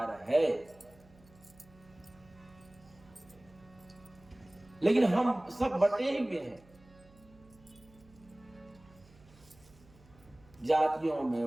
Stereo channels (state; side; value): noise; right; hum, 26 dB below the sound